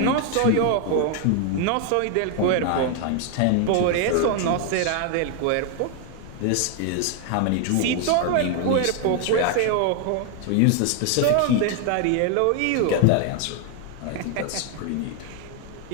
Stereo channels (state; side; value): different; both; correlation 0.01